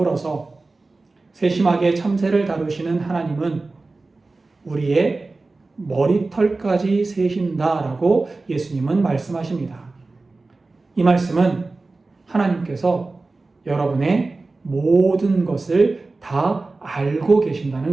세심하게 참새를 다루시는 하나님은 우리의 머리털까지 세신다라고 예수님은 말씀하십니다. 이 말씀은 하나님께서 여러분의 모든 것을 다 알고 계신다는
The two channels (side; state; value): left; quieter; 3.5 dB